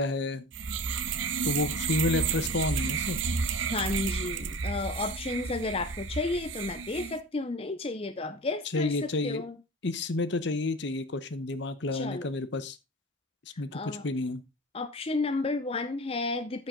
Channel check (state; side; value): normal; both; correlation 0.35